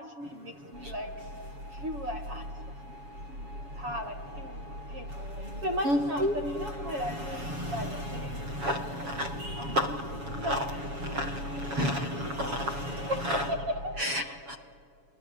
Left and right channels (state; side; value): late; left; 7.1 ms